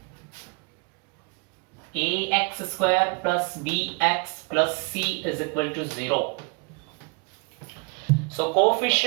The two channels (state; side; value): quieter; left; 31.9 dB